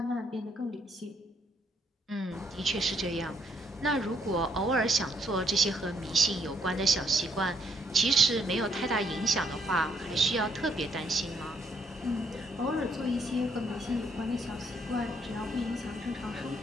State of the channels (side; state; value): both; normal; correlation 0.71